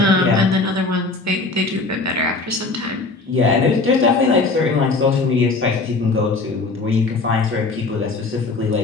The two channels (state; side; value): quieter; right; 3.6 dB